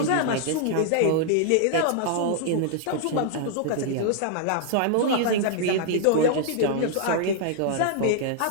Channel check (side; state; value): both; different; correlation -0.01